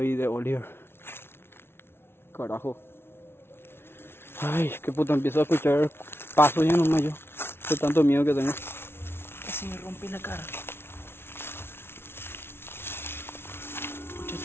y de Oliver. Carajo. Ay, qué puta, empiezo a escuchar pasos ya nomás yo. De tanto miedo que tengo. Casi me rompí la cara.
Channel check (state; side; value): late; right; 0.12 ms